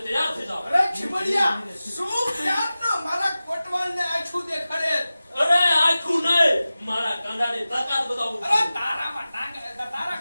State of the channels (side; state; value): both; inverted; correlation -0.95